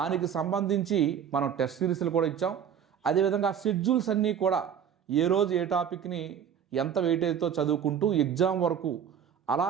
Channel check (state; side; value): quieter; left; 8.3 dB